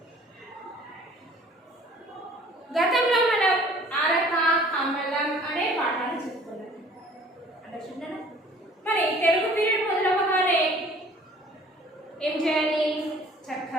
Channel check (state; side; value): normal; both; correlation 0.52